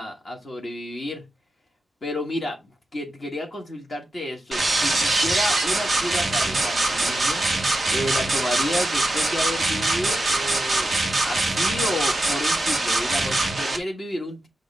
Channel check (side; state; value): both; normal; correlation 0.90